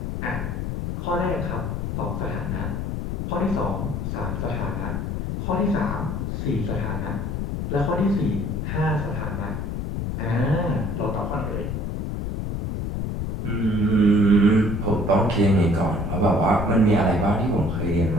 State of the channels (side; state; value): left; noise; rumble, 3 dB below the sound